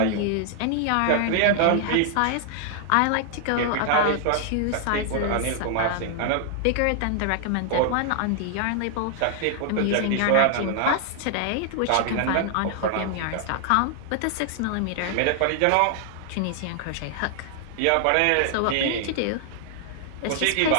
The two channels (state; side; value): different; both; correlation 0.00